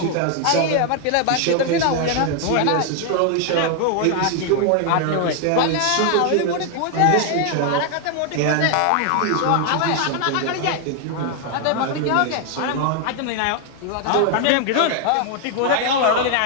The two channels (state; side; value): different; both; correlation 0.00